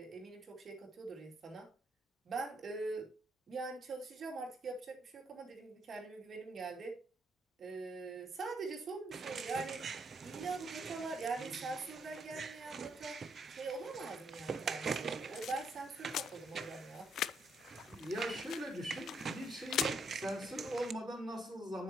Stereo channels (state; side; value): normal; both; correlation 0.74